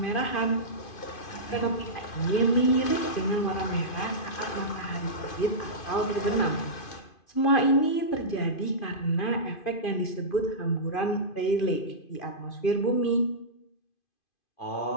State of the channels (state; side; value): late; right; 2.5 ms